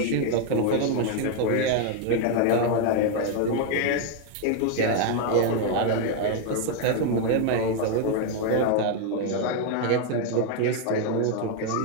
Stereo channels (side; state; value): both; different; correlation 0.00